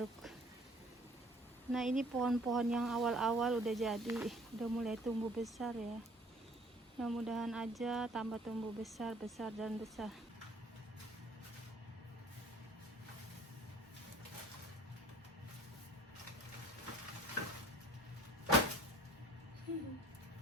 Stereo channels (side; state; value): both; normal; correlation 0.53